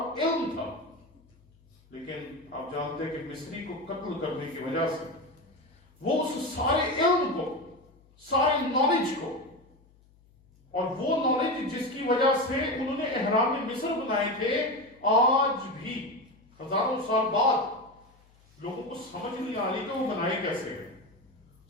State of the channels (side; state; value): left; noise; hum, 30 dB below the sound